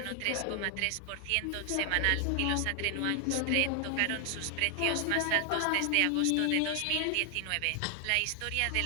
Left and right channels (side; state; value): both; different; correlation 0.00